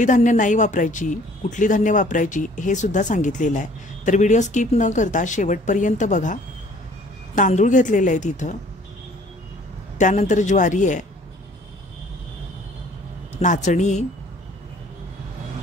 धान्य नाही वापरायची, कुठली धान्य वापरायची हे सुद्धा सांगितलेलं आहे। तर व्हिडिओ स्किप न करता शेवटपर्यंत बघा। तांदूळ घेतलेले आहेत इथं, त्यानंतर ज्वारी आहे, नाचणी,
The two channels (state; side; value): normal; both; correlation 0.55